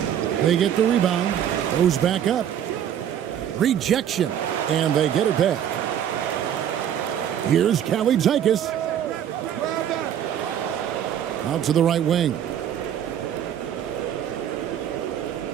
They get the rebound. Goes back up. Rejection. And they get it back. Here's Kalaitzakis. Out to the right wing.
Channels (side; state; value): left; quieter; 9.9 dB